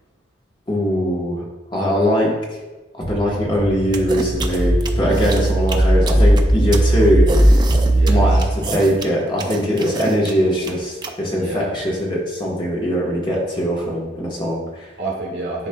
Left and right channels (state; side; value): normal; both; correlation 0.79